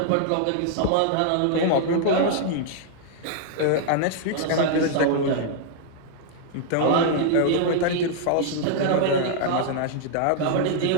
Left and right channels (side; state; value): both; different; correlation -0.01